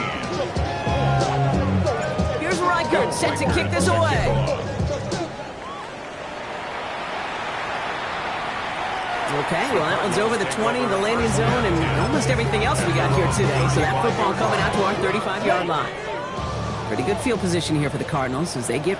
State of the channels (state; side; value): identical; both; correlation 1.00